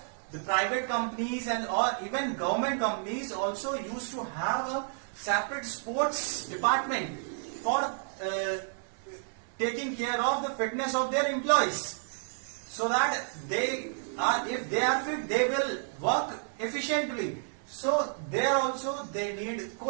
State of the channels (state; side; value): silent; left; 57 dB below the other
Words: the private companies and or even government companies also used to have a separate sports department for taking care of the fitness of their employees, so that they are, if they are fit, they will work efficiently. So there also they need